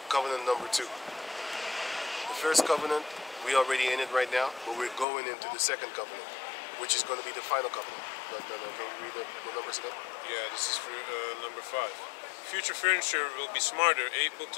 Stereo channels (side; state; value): right; drops out; at 5.1 s